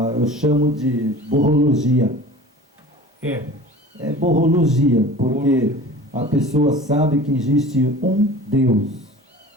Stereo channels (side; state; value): both; normal; correlation 0.40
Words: eu chamo de borrologia. É borrologia, porque a pessoa sabe que existe um Deus,